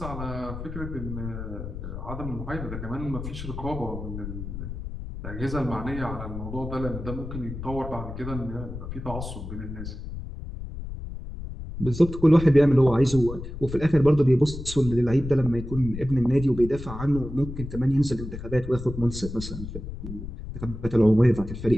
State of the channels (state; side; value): noise; left; rumble, 9 dB below the sound